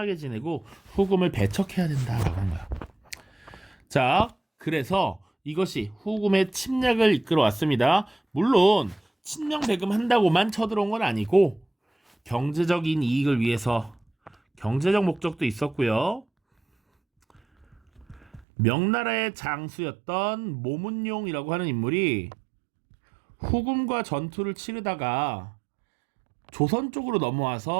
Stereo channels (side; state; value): left; drops out; at 18.4 s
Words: 지내고 후금을 배척해야 된다라고 한 거야. 자, 그래서 이것이 후금의 침략을 이끌어 왔습니다. 물론 친명배금 한다고만 쳐들어온 건 아니고 경제적인 이익을 위해서 경제적 목적도 있었고요. 명나라의 장수였던 모문용이라고 하는 인물이 후금과 전투를 치르다가 조선 쪽으로